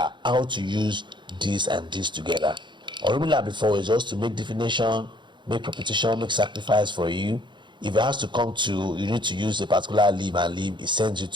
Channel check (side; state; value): left; late; 0.23 ms